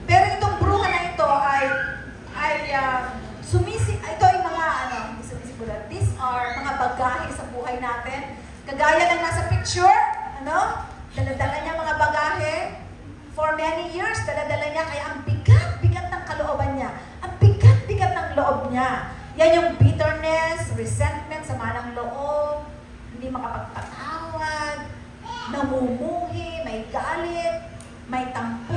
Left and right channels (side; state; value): both; identical; correlation 1.00